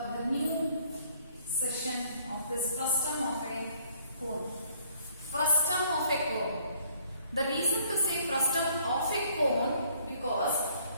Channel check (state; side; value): inverted; both; correlation -0.61